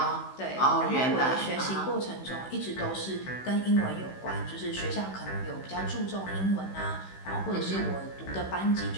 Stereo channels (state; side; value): late; right; 16 ms